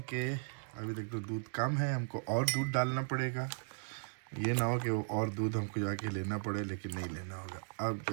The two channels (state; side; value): silent; left; digital silence